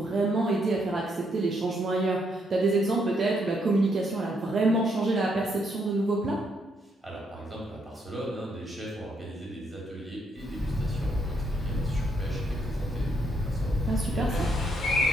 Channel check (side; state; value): both; normal; correlation 0.75